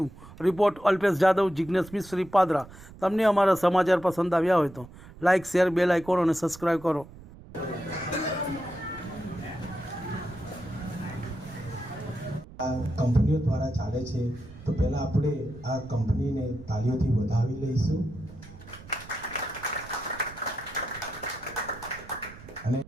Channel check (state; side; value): noise; right; rumble, 18 dB below the sound